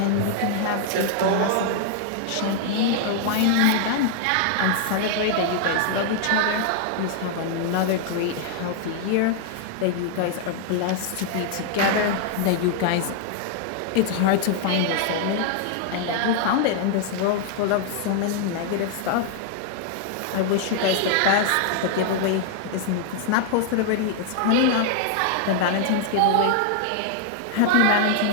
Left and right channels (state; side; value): different; both; correlation 0.00